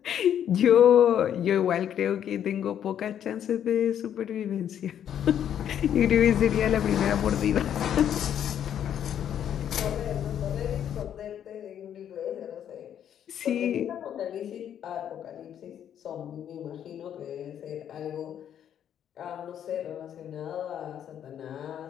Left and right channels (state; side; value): quieter; right; 9.7 dB